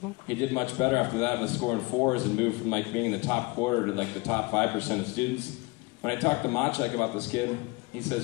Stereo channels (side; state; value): right; quieter; 25.4 dB